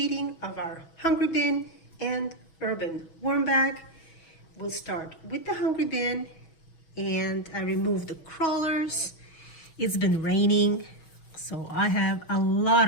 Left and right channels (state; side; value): late; right; 6.2 ms